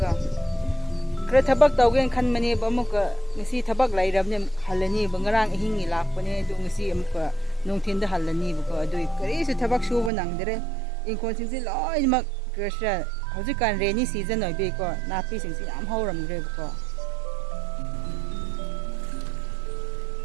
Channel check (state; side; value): drops out; left; at 10.1 s